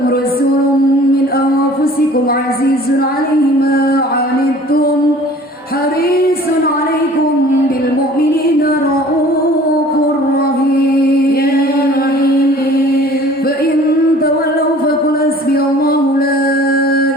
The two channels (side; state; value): both; normal; correlation 0.49